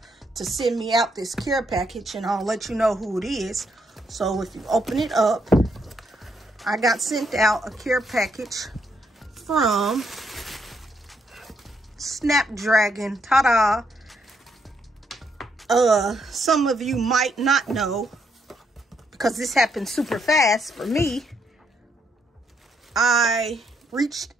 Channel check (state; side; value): normal; both; correlation 0.75